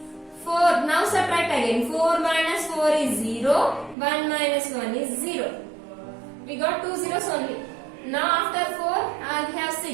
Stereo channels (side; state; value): left; drops out; at 4.0 s